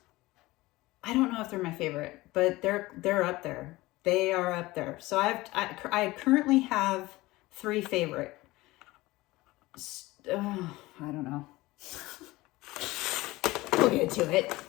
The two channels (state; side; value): quieter; right; 19.7 dB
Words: I don't know if they're my favorite, but they're up there. They are up there. So I currently have 3 favorite. I don't know. We'll get to it.